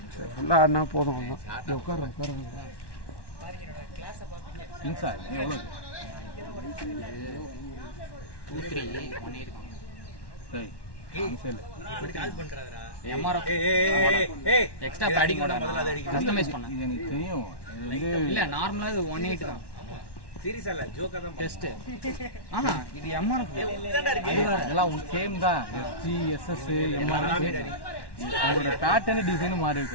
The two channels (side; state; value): right; late; 1.1 ms